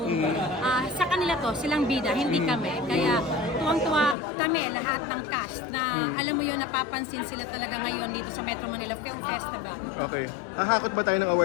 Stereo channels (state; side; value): drops out; right; at 4.2 s